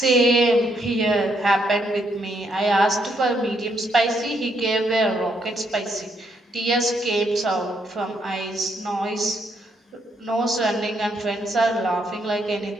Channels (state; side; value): normal; both; correlation 0.75